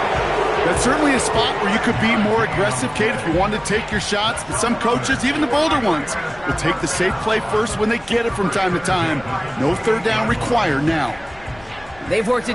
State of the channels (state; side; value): noise; left; rumble, 23 dB below the sound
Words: That's certainly a spot where you could be more aggressive, Kate, if you wanted to take your shots. But some coaches, even the bolder ones, will take the safe play first when they get it from time to time. No 3rd down required now. They've worked